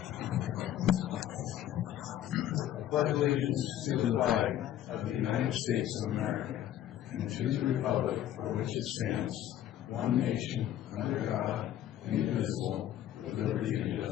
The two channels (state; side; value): quieter; right; 11.8 dB